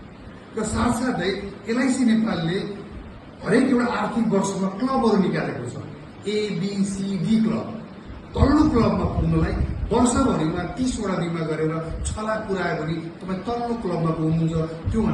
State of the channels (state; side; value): identical; both; correlation 1.00